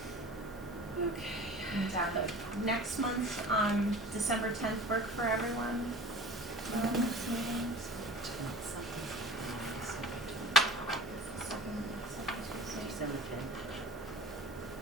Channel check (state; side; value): normal; both; correlation 0.40